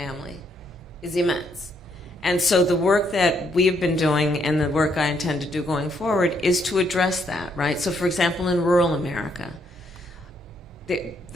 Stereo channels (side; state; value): both; normal; correlation 0.73